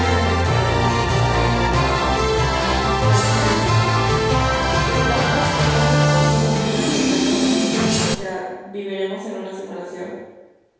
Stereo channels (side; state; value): both; identical; correlation 1.00